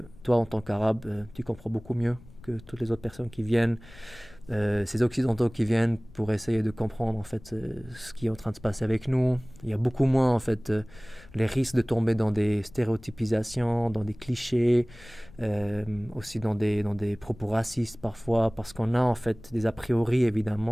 toi, en tant qu'arabe, tu comprends beaucoup mieux que toutes les autres personnes qui viennent. Ces occidentaux qui viennent pour essayer de comprendre en fait ce qui est en train de se passer avec nous. Il y a beaucoup moins en fait les risques de tomber dans des stéréotypisations, dans des clichés, aussi dans des propos racistes parfois, parce qu'on a en fait des a priori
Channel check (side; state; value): left; noise; rumble, 21 dB below the sound